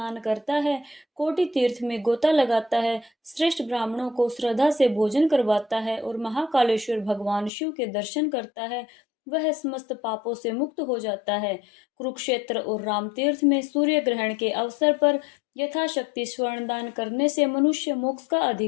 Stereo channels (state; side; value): drops out; right; at 7.5 s